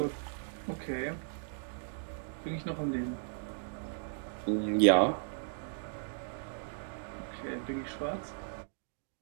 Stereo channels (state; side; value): silent; left; digital silence